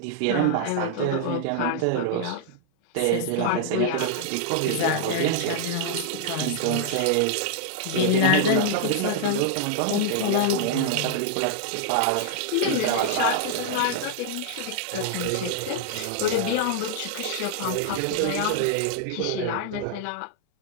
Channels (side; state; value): both; different; correlation -0.01